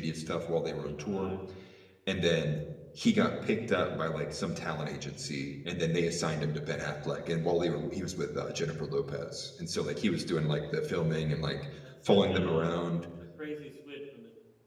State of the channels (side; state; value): both; identical; correlation 1.00